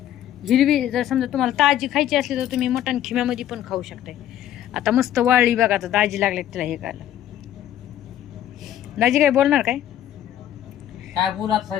हिरवी जर समजा तुम्हाला ताजी खायची असली तर तुम्ही मटण खिम्यामध्ये पण खाऊ शकताय. आता मस्त वाळली बघा. आता दाजी लागले तिला हे खायला. दाजी काय बोलणार काय? काय बोलात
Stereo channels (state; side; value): quieter; right; 11.6 dB